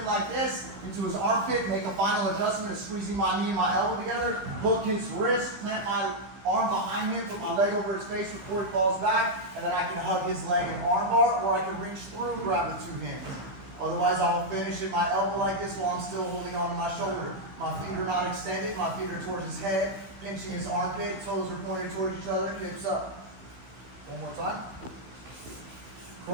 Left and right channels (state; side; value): late; left; 15 ms